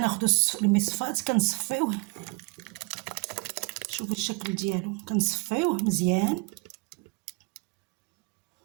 المصفات كنصفيوه. شوفوا الشكل ديالو، كنصفيوه مزيان.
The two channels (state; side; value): quieter; left; 28.8 dB